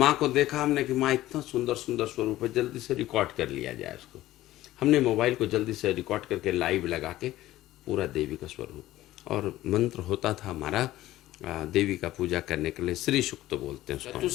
को देखा हमने कि माँ इतना सुंदर सुंदर स्वरूप है, जल्दी से रिकॉर्ड कर लिया जाए उसको। हमने मोबाइल को जल्दी से रिकॉर्ड करके लाइव लगा के पूरा देवी का स्वरूप, और मंत्र होता था हमारा देवी का पूजा करने के लिए, श्री सुक्त बोलते हैं उसको।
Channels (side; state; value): right; quieter; 15.5 dB